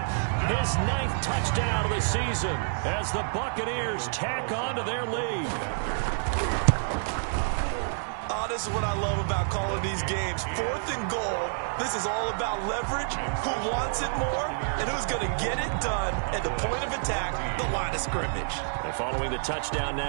his 9th touchdown of the season as the Buccaneers tack on to their lead. Oh, this is what I love about calling these games. 4th and goal. This is all about leverage, who wants it more, and who's going to get it done at the point of attack, the line of scrimmage. And following the touchdown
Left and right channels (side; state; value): left; silent; digital silence